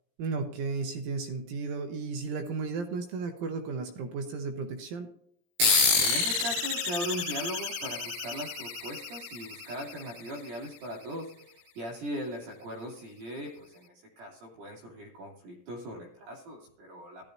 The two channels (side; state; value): left; late; 17 ms